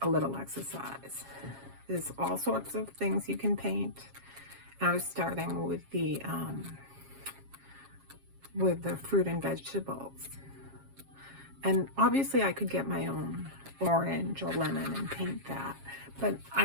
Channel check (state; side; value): late; left; 7.4 ms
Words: a little exercise. There's all sorts of things you can paint. I was starting with the fruit and vegetables. And obviously I could get my own orange or lemon and paint that, but